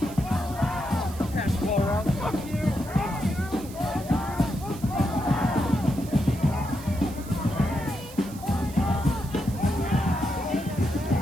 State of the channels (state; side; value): noise; right; hiss, 17 dB below the sound